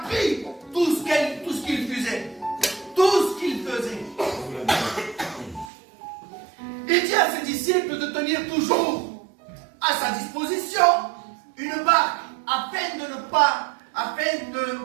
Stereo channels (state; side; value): drops out; left; at 5.7 s